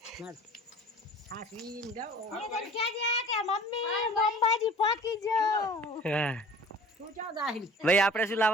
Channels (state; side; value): normal; both; correlation 0.46